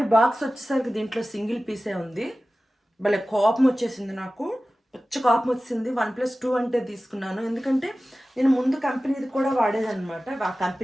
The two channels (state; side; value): normal; both; correlation 0.96